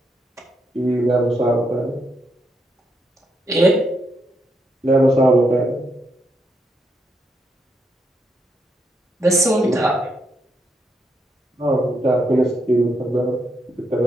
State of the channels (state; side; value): normal; both; correlation 0.79